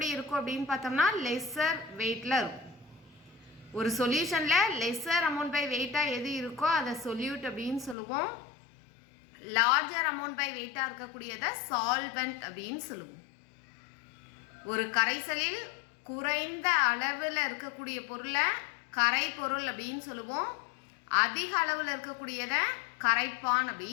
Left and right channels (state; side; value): drops out; right; at 8.0 s